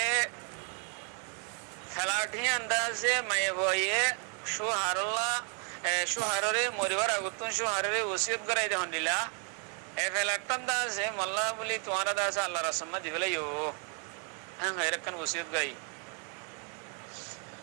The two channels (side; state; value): left; quieter; 39.5 dB